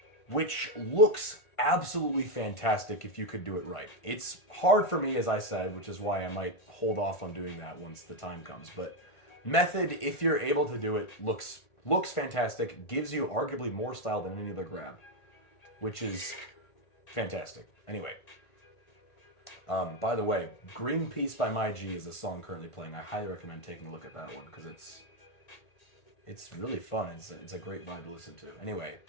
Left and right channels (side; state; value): right; late; 1.5 ms